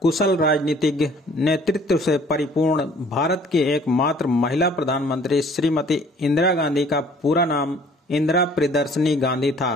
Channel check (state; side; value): normal; both; correlation 0.55